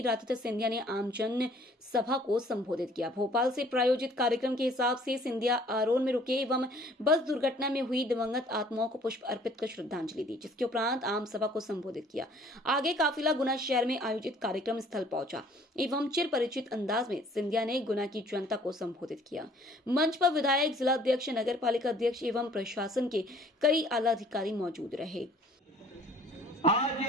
सिंधिया ने आम जन सभा को संबोधित किया। भोपाल से प्रायोजित कार्यक्रम के हिसाब से सिंधिया आरोन में रुके एवं बस दुर्घटना में हुई दिवंगत आत्माओं को पुष्प अर्पित कर श्रद्धांजलि दी, जिसके उपरांत आम सभा को संबोधित किया। आगे काफिला गुना शहर में आयोजित कार्यक्रम स्थल पहुंचा एवं चिर परिचित अंदाज में सिंधिया ने गुना की जनता को संबोधित किया। मंच पर विधायक, जिला अध्यक्ष, नगर पालिका अध्यक्ष एवं प्रशासन के कई आला अधिकारी मौजूद रहे। आज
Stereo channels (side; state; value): both; normal; correlation 0.56